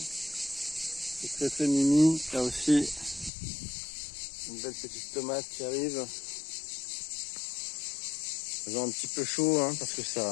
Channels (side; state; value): right; drops out; at 3.3 s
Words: C'est très très mimi. Là aussi, une belle petite tomate qui arrive. Elles ont un petit peu chaud hein, parce que